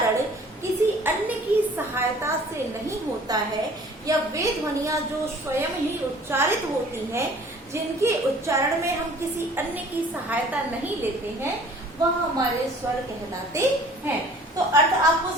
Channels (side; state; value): both; normal; correlation 0.50